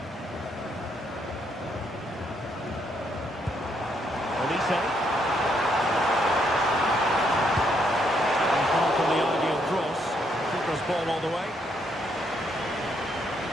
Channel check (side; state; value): both; normal; correlation 0.74